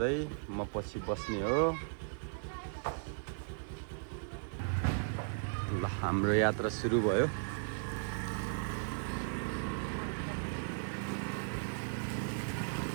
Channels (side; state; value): left; silent; digital silence